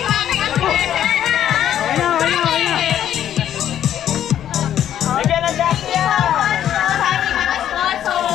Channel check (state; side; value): quieter; right; 10.7 dB